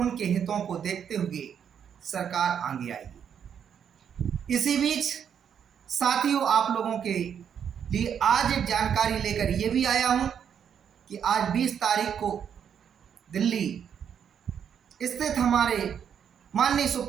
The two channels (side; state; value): left; quieter; 8.2 dB